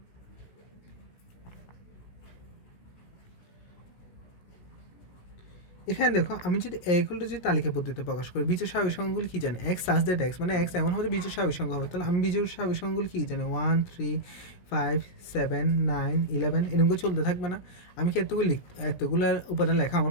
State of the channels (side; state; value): right; late; 16 ms